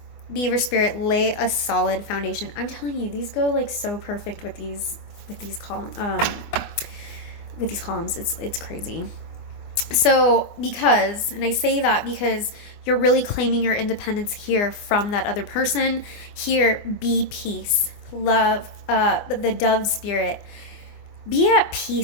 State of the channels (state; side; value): late; right; 24 ms